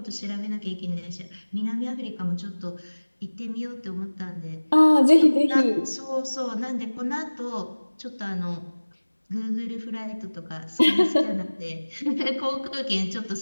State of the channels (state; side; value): inverted; both; correlation -1.00